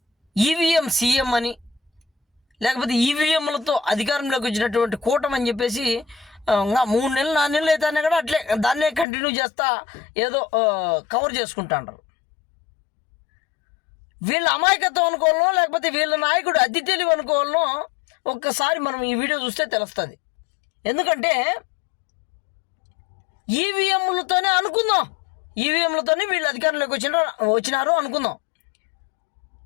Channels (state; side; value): drops out; right; at 9.1 s